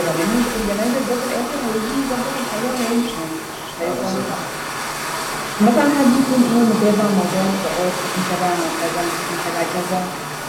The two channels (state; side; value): identical; both; correlation 1.00